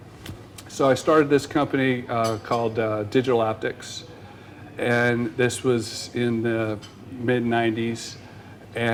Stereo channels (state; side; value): identical; both; correlation 1.00